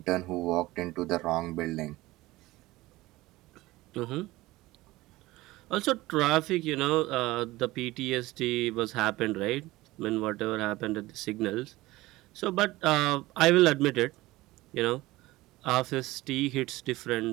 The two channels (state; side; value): quieter; left; 18.8 dB